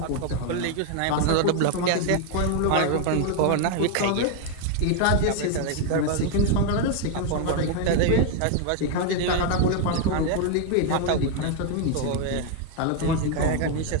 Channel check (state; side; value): different; both; correlation 0.01